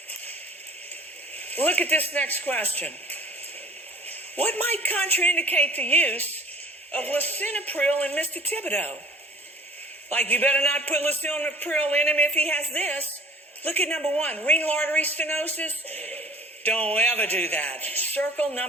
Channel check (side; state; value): both; normal; correlation 0.47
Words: Look at this next question. What might contraindicate the use of lisinopril in Mr. Thibodeau? Like, you better not put lisinopril in him if he has this. Look at number 1, renal artery stenosis. Don't ever do that. Circle